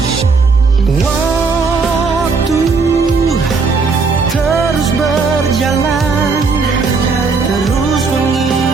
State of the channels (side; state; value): left; quieter; 4.6 dB